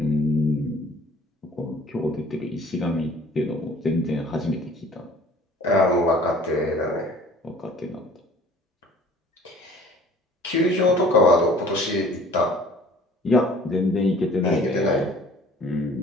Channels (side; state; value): both; normal; correlation 0.51